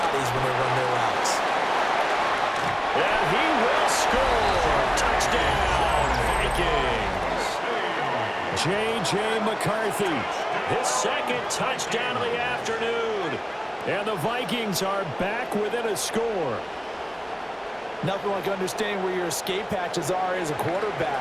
when they run their routes. And he will score. Touchdown, Vikings. J.J. McCarthy. His second touchdown of the afternoon. And the Vikings are back within a score. Nothing like understanding where your escape hatches are as a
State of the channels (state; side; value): identical; both; correlation 1.00